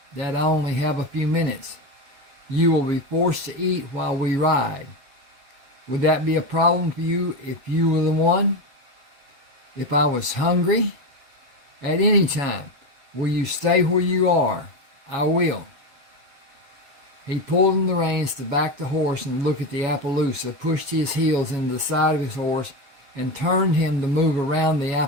that I only have a few minutes. You will be forced to eat while we ride. Would that be a problem for you if you were the one? If I was hungry? At any time. Will you stay where you are? I will. He pulled in the reins to back the horse and look at the Appaloosa, pushed his heels into the side of his horse, and turned him to move around the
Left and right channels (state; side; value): late; left; 7.7 ms